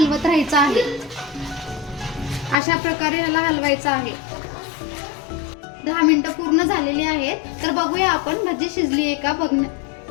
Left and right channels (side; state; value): right; drops out; at 2.6 s